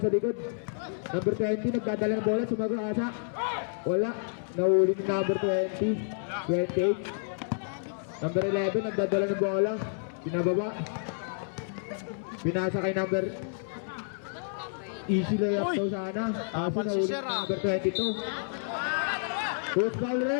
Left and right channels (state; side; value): silent; right; 58 dB below the other